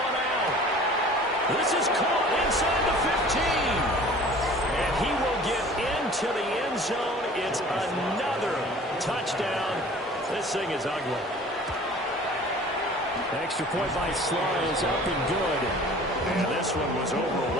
out. This is caught inside the 15. And he will get into the end zone. It's another touchdown. This thing is ugly. Extra point by Sly is up and good. And this one was over a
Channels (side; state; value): both; normal; correlation 0.46